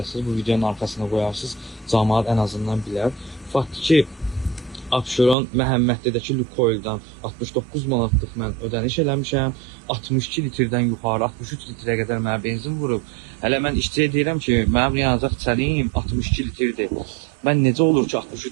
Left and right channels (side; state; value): left; drops out; at 5.4 s